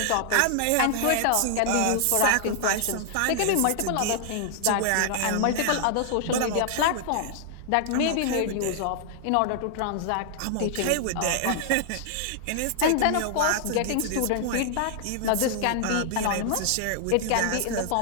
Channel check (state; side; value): different; both; correlation -0.01